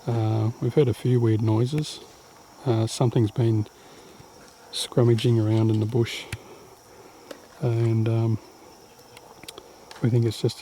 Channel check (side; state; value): both; identical; correlation 1.00